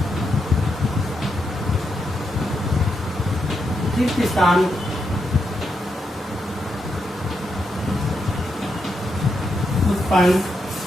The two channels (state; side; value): normal; both; correlation 0.82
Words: रिक्त स्थान उत्पन्न